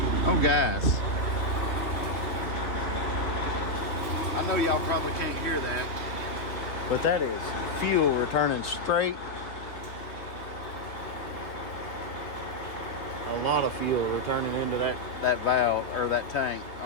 Oh, guys. I know y'all probably can't hear that, but that is fuel returning straight. A lot of fuel returning into that valve or that tank.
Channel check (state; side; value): late; right; 3.0 ms